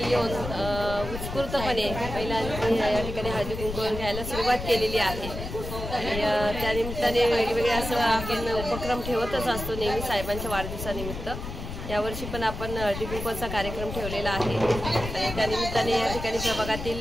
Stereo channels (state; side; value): noise; left; rumble, 7 dB below the sound